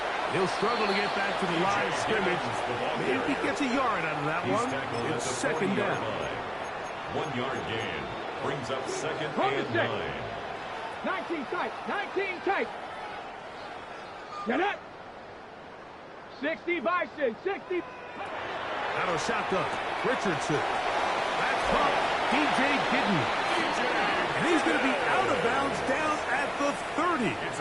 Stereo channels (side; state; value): both; identical; correlation 1.00